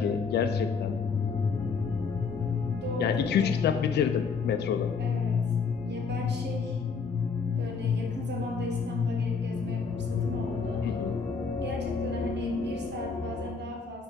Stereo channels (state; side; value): quieter; right; 5.3 dB